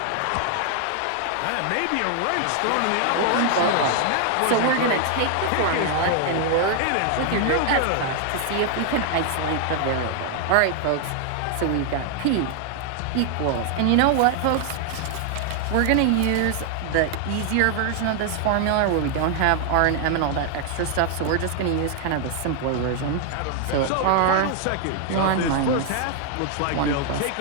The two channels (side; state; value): both; different; correlation 0.00